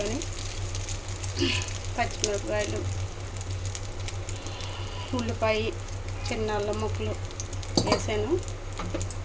పచ్చిమిరపకాయలు, ఉల్లిపాయ, చిన్న అల్లం ముక్కలు వేసాను.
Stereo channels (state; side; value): identical; both; correlation 1.00